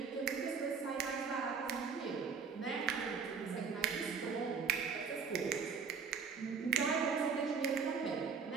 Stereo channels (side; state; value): left; quieter; 5.7 dB